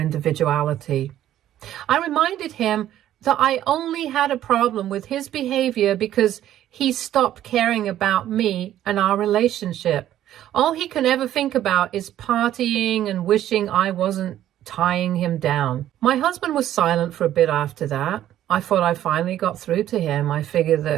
I reminded him that I only had a problem with his behavior because he stopped caring about me and our relationship. All he can ever think about is partying and wishing I wasn't tying him down. My husband was silent for a bit after that. I thought I finally got through to him. I figured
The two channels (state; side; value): quieter; left; 12.2 dB